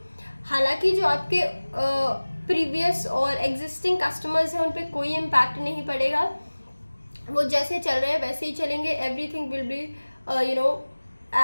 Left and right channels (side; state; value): both; inverted; correlation -1.00